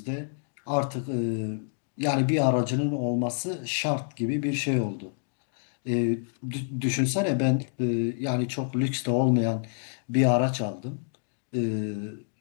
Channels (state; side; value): silent; right; digital silence